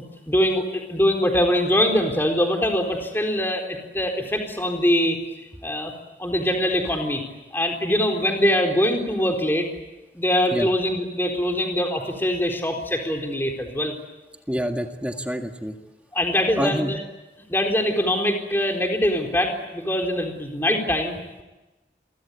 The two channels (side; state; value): both; normal; correlation 0.58